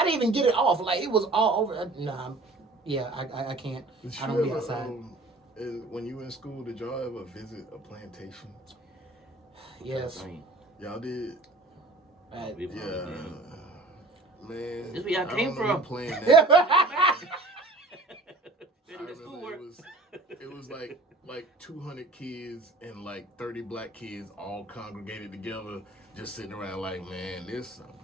they even get it off? Like, it was all over. Nah, yeah, I can't. I don't be outside. And when you were in school, did y'all ever visit a plantation? Yes. Y'all did? Yeah. Man. This where y'all came from. Playing that. It was like 200 kids and like 30 black kids all congregated together, just sitting around like, man, this some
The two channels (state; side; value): quieter; left; 3.0 dB